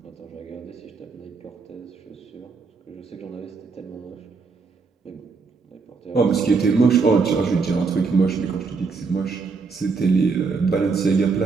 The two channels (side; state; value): left; quieter; 4.7 dB